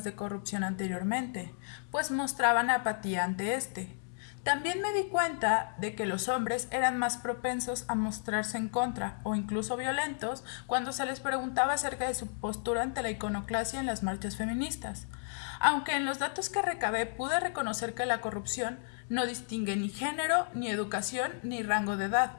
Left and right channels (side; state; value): right; silent; digital silence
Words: de corrupción anteriormente, pues mostraban apatía ante este. También me di cuenta de que los hombres eran más propensos a mostrarse en contra o incluso violentos cuando se les preguntaba acerca de su postura ante la iconoclasia en las marchas feministas. Aunque en los datos que recabé pude reconocer que la corrupción no distingue ni género, ni educación, ni rango de edad,